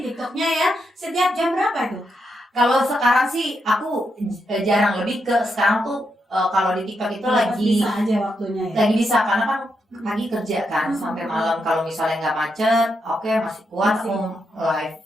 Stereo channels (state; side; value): normal; both; correlation 0.82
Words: ya. Setiap jam berapa itu? Kalau sekarang sih aku jarang, lebih ke sekarang tuh kalau di TikTok itu lagi bisa aja waktunya ya. lagi bisa karena kan pagi kerja kan sampai malam. Kalau misalnya nggak macet, oke masih kuat Masih. aku live.